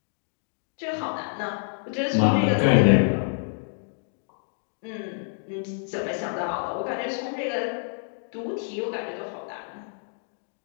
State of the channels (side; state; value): right; silent; digital silence